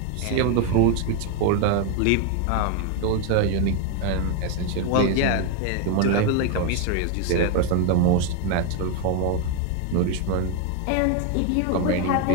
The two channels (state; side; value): different; both; correlation 0.01